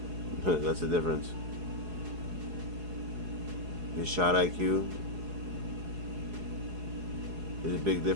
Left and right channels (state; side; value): late; left; 4.8 ms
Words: That's the difference. His shot IQ is a big